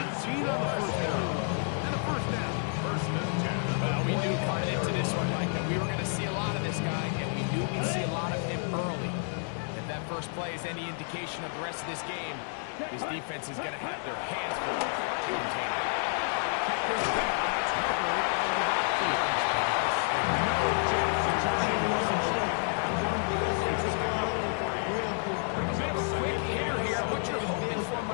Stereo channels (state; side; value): silent; right; 55 dB below the other